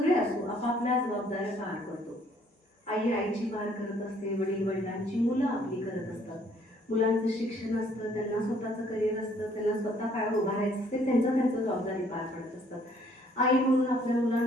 असो आपापल्या जबाबदाऱ्या पार करतो. आई आईची पार करत असते, वडील वडिलांची, मुलं आपली करत असतात. मुलांचं शिक्षण असतं, त्यांना स्वतःचं करिअर असतं, त्यांना स्वतः पायावर उभा राहायचं असते, त्यांचं जबाबदारी पार पडत असतात. आई म्हणून आपल्या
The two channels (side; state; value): both; normal; correlation 0.62